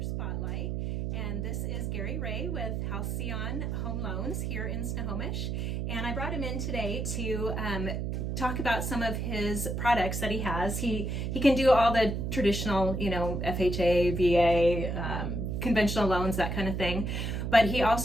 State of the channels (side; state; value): right; noise; hum, 2 dB below the sound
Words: spotlight, and this is Gary Ray with Halcyon Home Loans here in Snohomish. And I brought him in today to talk about some of his products that he has. He can do all the traditional, FHA, VA, conventional loans, that kind of thing. But he